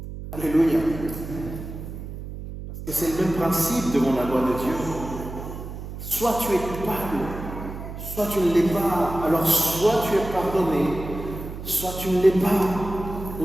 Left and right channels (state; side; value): noise; right; hum, 10 dB below the sound